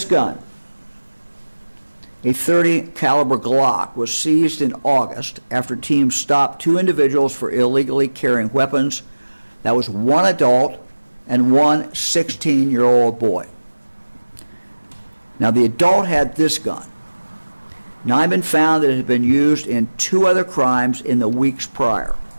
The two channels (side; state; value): both; inverted; correlation -1.00